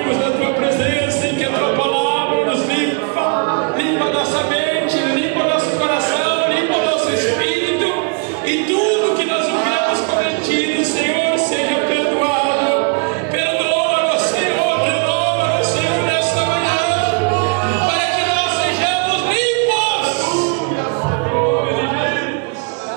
na tua presença e que a tua palavra nos limpa, limpa nossa mente, limpa nosso coração, limpa nosso espírito, e tudo que nós houvermos cometido, Senhor, seja perdoado. Perdoa-nos, Senhor, renova-nos, Senhor, nesta manhã, para que nós sejamos limpos.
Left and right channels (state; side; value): quieter; left; 35.9 dB